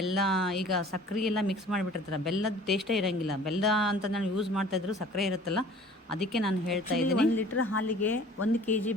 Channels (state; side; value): normal; both; correlation 0.48